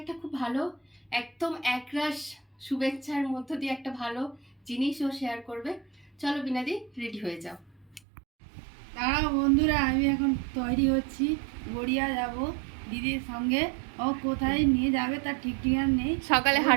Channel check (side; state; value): left; drops out; at 8.0 s